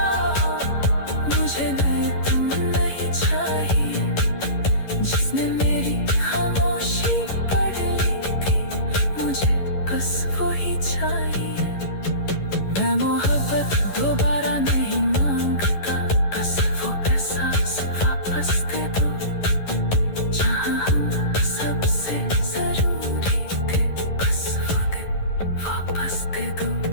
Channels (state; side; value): late; right; 11 ms